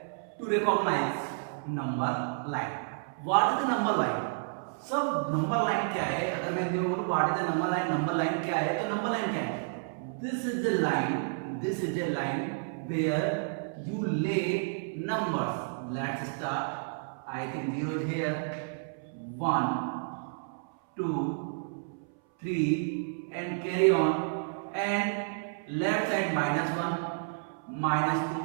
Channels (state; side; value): silent; left; 57 dB below the other